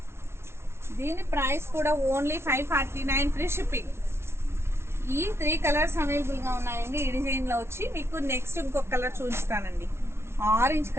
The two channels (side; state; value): left; late; 0.12 ms